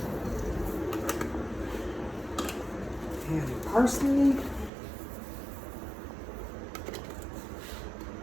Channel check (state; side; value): drops out; left; at 4.7 s